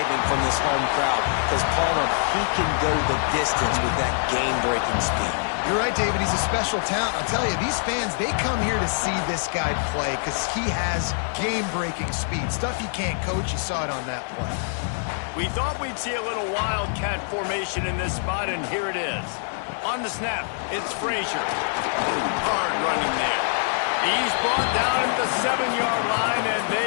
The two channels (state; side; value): silent; right; digital silence